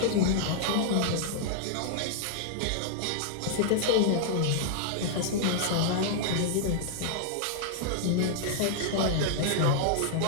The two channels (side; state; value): both; different; correlation -0.01